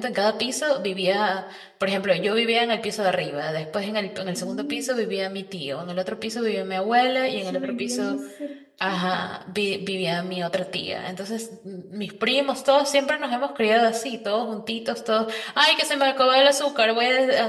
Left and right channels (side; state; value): both; identical; correlation 1.00